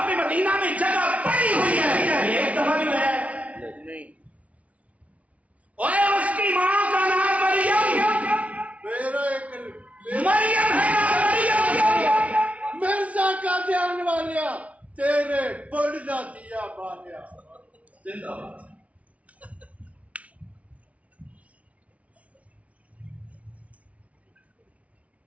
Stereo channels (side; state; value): left; late; 0.066 ms